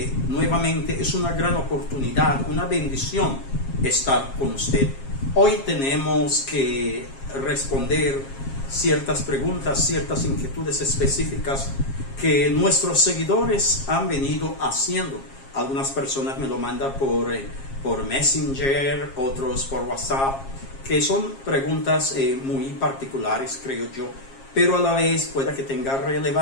nuevamente, es una gran oportunidad, una bendición estar con usted. Hoy tenemos que responder ciertas preguntas, ciertas inquietudes específicas que nuestros seguidores han venido haciendo. Algunas personas me lo mandan por Messenger, otros por WhatsApp, que son preguntas muy particulares, creo yo, pero a la vez pueda que tenga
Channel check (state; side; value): late; right; 7.4 ms